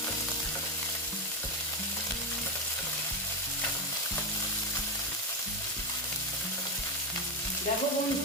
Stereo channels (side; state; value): both; normal; correlation 0.11